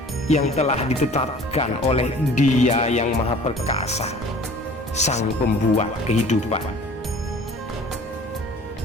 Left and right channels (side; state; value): both; normal; correlation 0.48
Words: yang telah ditetapkan oleh Dia yang Maha Perkasa, Sang Pembuat kehidupan.